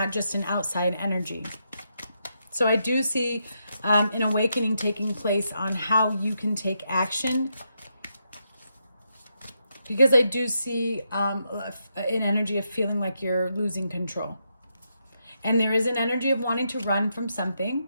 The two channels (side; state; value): both; inverted; correlation -0.82